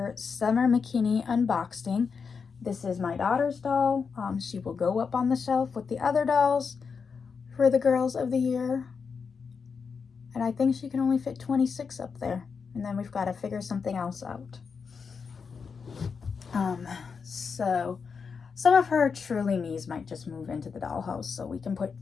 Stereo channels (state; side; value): quieter; right; 5.7 dB